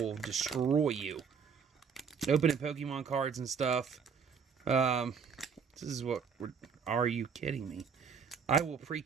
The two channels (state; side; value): quieter; left; 6.3 dB